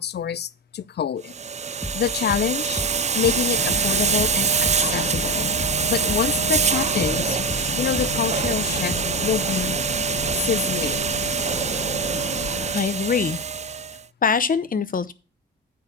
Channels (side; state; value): both; normal; correlation 0.15